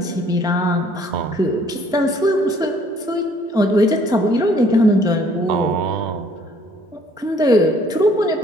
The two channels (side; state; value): both; normal; correlation 0.60